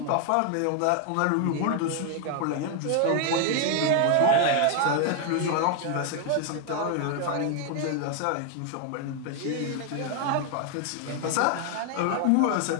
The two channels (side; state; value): both; different; correlation 0.00